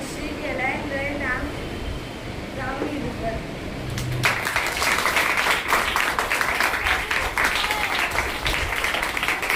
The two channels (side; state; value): both; identical; correlation 1.00